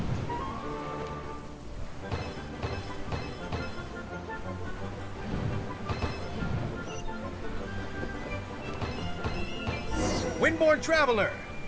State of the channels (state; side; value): identical; both; correlation 1.00